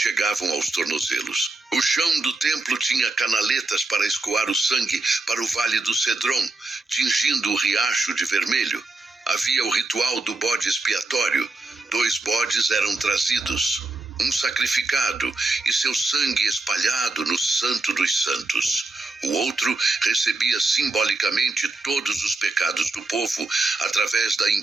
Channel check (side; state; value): left; quieter; 3.2 dB